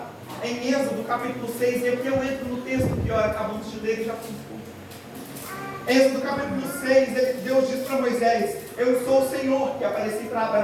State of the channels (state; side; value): identical; both; correlation 1.00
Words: em Êxodo capítulo 6, e aqui eu entro no texto que acabamos de ler e já fui. Êxodo capítulo 6, Deus diz para Moisés: eu sou o Senhor que apareci para